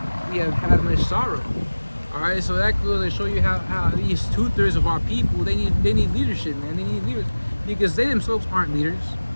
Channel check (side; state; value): both; inverted; correlation -1.00